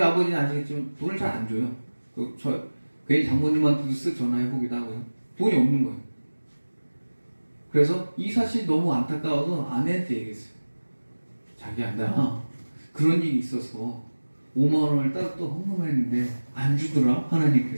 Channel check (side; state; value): both; inverted; correlation -1.00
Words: 아버지는 아시겠지만 돈을 잘 안 줘요. 괜히 장모님한테도 쓱 전화해보기도 하고요. 돈이 없는 거예요. 그래서 이 사실이 너무 안타까워서 아내한테 얘기했어요. 자기야, 나 그런 일이 있어서 5만 원을 따로 또 헌금했는데 안 주더라